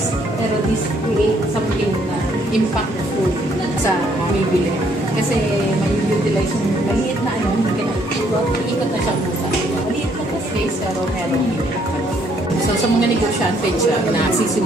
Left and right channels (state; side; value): normal; both; correlation 0.67